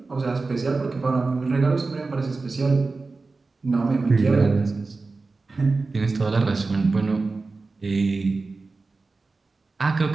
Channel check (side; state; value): left; quieter; 3.8 dB